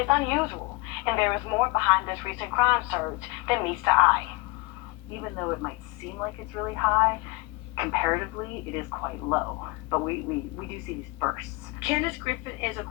unusual, and there is more behind this recent crime surge than meets the eye. Even though it might seem like it's really high, comparatively it is quite low. But we do see these bursts. Candace Griffin is a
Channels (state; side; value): quieter; right; 24.9 dB